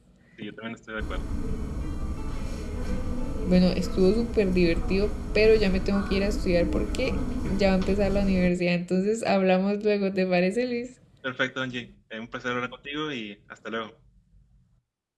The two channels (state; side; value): identical; both; correlation 1.00